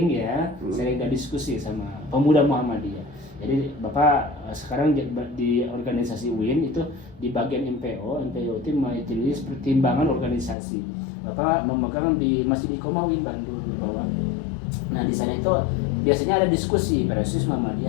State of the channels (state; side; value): drops out; right; at 10.6 s